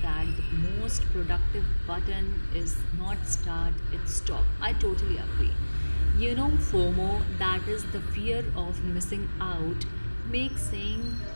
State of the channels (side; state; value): both; inverted; correlation -1.00